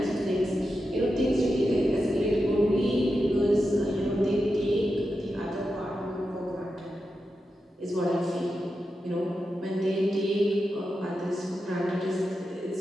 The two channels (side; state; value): both; normal; correlation 0.89